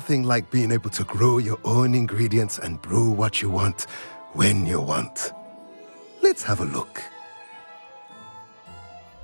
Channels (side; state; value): both; inverted; correlation -1.00